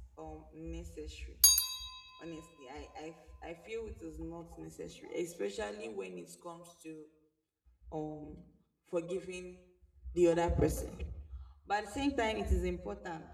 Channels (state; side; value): identical; both; correlation 1.00